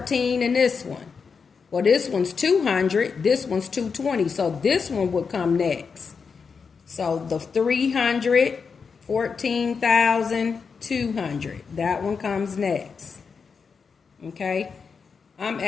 and this one. Well, this one's 200. This one's 220. So this one would come next. So the 314,200. That one comes next. Okay. I'm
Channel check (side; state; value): right; quieter; 5.6 dB